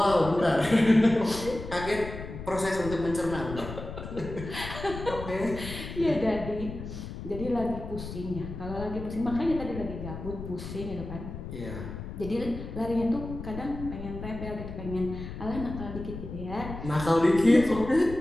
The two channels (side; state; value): left; noise; rumble, 9 dB below the sound